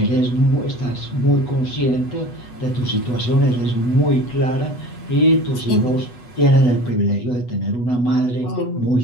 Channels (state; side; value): late; right; 8.1 ms